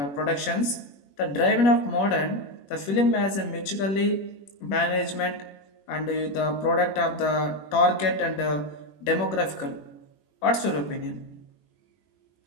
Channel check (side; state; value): right; late; 21 ms